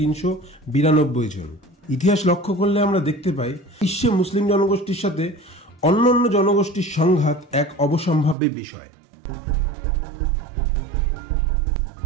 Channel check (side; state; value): left; drops out; at 8.3 s